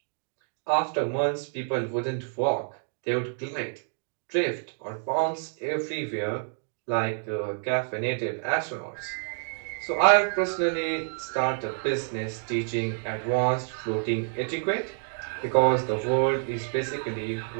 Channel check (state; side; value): silent; left; 59 dB below the other